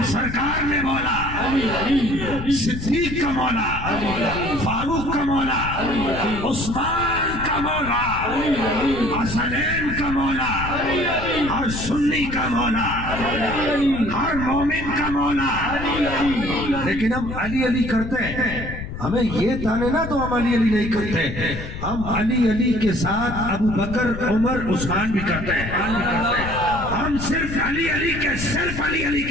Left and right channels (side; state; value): left; noise; rumble, 8 dB below the sound